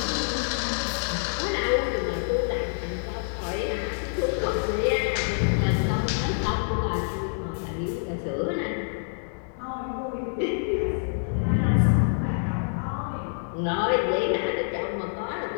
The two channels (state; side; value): silent; right; digital silence